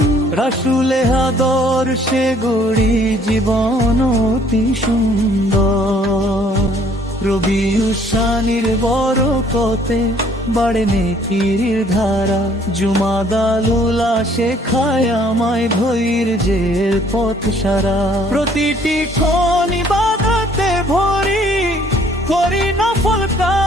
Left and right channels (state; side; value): normal; both; correlation 0.60